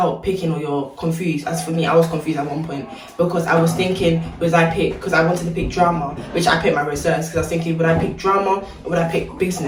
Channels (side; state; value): both; identical; correlation 1.00